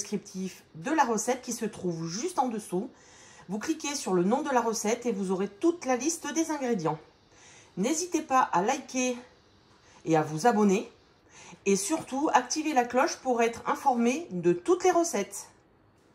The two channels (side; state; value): both; identical; correlation 1.00